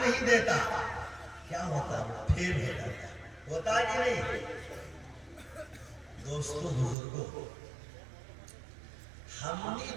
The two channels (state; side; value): drops out; left; at 7.0 s